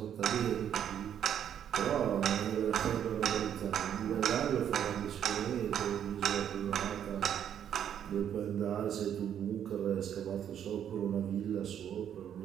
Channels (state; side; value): quieter; left; 9.4 dB